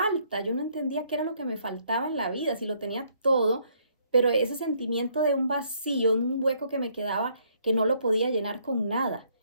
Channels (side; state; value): both; inverted; correlation -0.68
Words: Yo no entendía qué era lo que me faltaba en la vida, si lo tenía todo, pero ese sentimiento de un vacío, un hueco que me quedaba, que no lo podía llenar con nada.